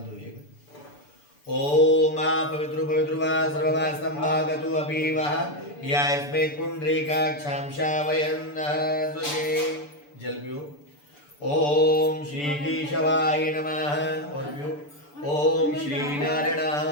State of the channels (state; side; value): late; right; 6.9 ms